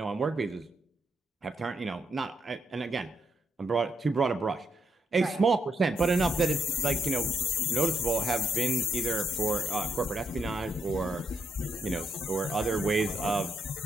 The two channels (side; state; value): both; normal; correlation 0.76